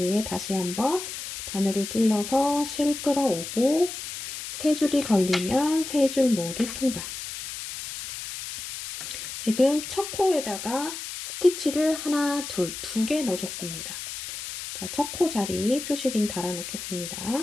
다시 한번 바늘을 찔러서 실 끌어오고 3줄이 걸리면 3줄 모두 통과. 지금 첫 코에다가 스티치를 하나, 둘, 2개 넣어줬습니다. 자, 첫 코 자리 표시링 달아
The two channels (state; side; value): noise; left; hiss, 8 dB below the sound